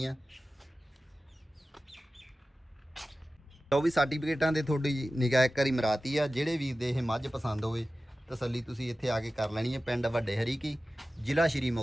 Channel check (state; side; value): normal; both; correlation 0.95